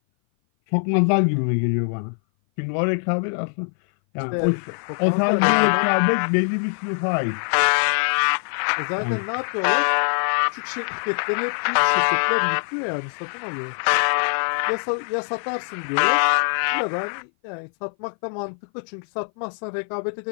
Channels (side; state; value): right; silent; 57 dB below the other